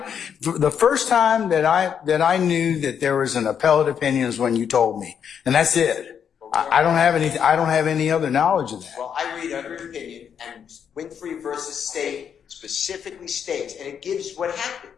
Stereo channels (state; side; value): quieter; right; 7.8 dB